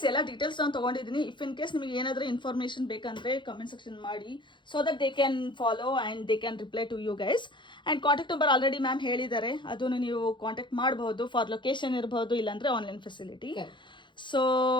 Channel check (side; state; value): right; late; 0.23 ms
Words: ಎಲ್ಲ details ನಾನು ತಗೊಂಡಿದ್ದೀನಿ. If in case ನಿಮಗೆ ಏನಾದರೂ ಇನ್ಫಾರ್ಮೇಶನ್ ಬೇಕಂದ್ರೆ ಕಮೆಂಟ್ ಸೆಕ್ಷನ್ ಮಾಡಿ, so that they can follow and they can reply to you guys. And contact number already ma'am ಹೇಳಿದ್ದಾರೆ, ಅದನ್ನು ನೀವು ಕಾಂಟ್ಯಾಕ್ಟ್ ಮಾಡಬಹುದು ಫಾರ್ ಲೊಕೇಶನ್ ಇರಬಹುದು, ಇಲ್ಲಾಂದ್ರೆ online facility. So